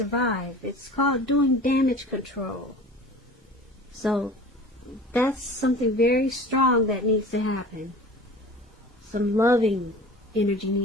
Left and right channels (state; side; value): normal; both; correlation 0.40